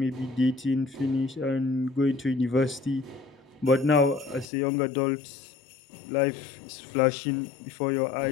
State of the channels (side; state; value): right; drops out; at 4.5 s